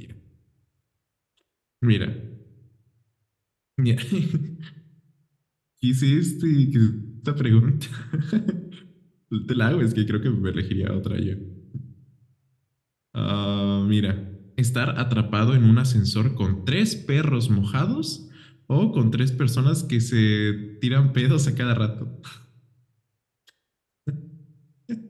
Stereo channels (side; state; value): both; identical; correlation 1.00